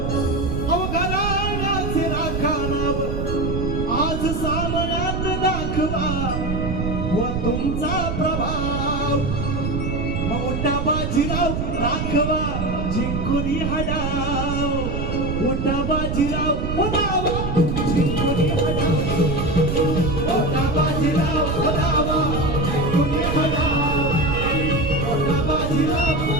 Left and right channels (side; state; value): right; noise; rumble, 2 dB below the sound